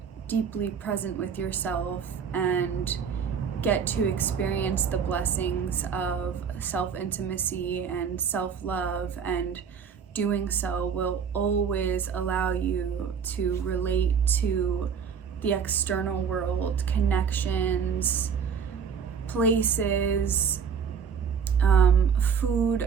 deeply present with yourself and get to experience the blessings of self-intimacy and self-love, and doing so will always allow you to relate to the external world, connections, places,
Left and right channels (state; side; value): quieter; left; 6.8 dB